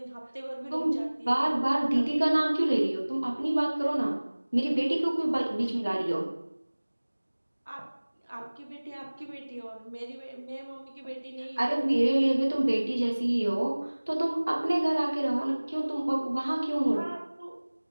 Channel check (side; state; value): both; inverted; correlation -1.00